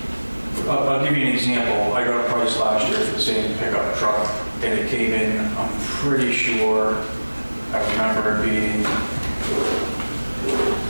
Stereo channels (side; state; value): both; inverted; correlation -1.00